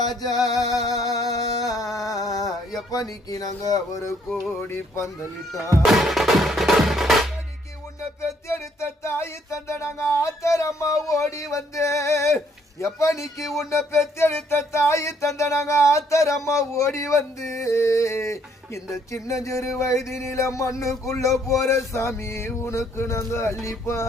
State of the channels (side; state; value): both; normal; correlation 0.67